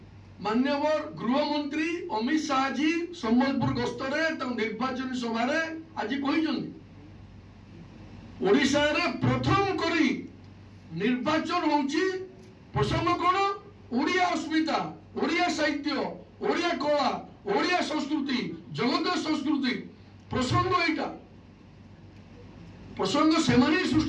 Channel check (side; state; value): both; identical; correlation 1.00